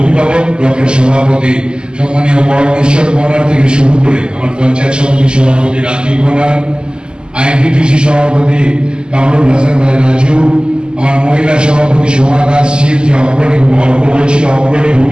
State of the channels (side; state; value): left; late; 0.048 ms